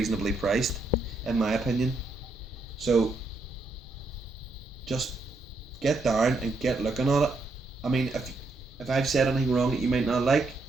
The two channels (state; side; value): quieter; left; 3.2 dB